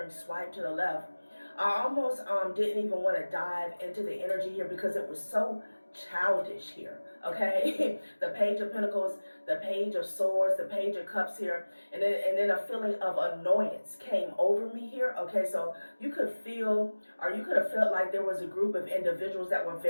swipe to the left. I almost didn't even want to dive into the energy here because it was so childish here, okay? The Page of Pentacles, the Page of Swords, the Page of Cups here, and then a feeling of annoyance came over me here, okay? So you could feel, or you could have felt like there was a group of individuals that were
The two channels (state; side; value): inverted; both; correlation -1.00